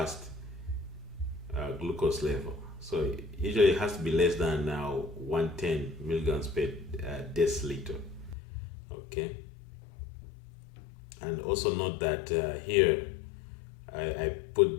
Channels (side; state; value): right; drops out; at 8.3 s